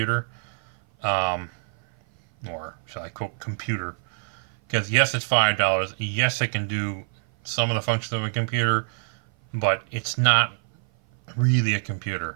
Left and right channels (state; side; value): silent; left; 56 dB below the other